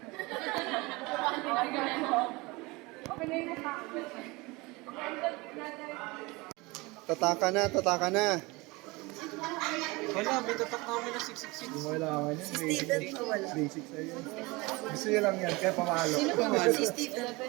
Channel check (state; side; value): quieter; left; 24.0 dB